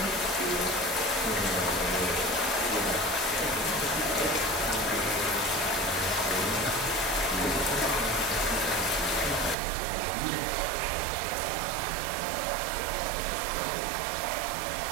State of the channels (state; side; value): drops out; left; at 9.6 s